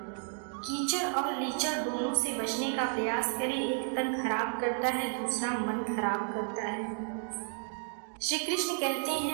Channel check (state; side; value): silent; left; 56 dB below the other